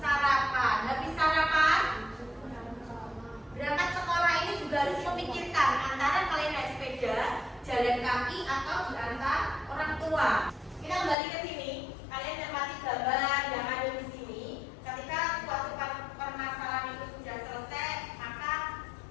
Habis sarapan? Berangkat sekolah ini juga harus memikirkan antara kalian naik sepeda, jalan kaki, atau diantar orang tua. Kita kembali ke sini. Kalian cermati gambar yang ada di sini. Ketika suatu permasalahan itu sudah selesai, maka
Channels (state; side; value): drops out; right; at 11.2 s